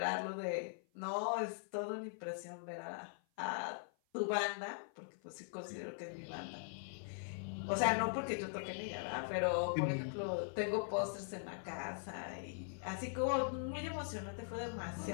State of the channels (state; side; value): silent; right; 50 dB below the other